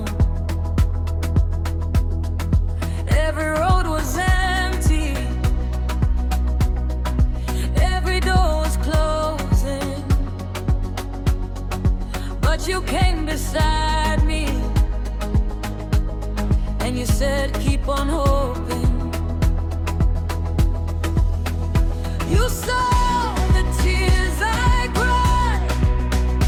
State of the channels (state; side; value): identical; both; correlation 1.00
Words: Every road was empty, every door was closing, but you came beside me, and you said, keep on hoping. You saw the tears I cried,